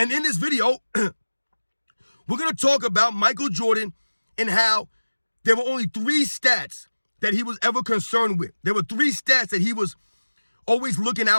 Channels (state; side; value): inverted; both; correlation -1.00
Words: in this video, we're going to talk about Michael Jordan and how there were only 3 stats that he was ever concerned with. There were 3 stats that he was always looking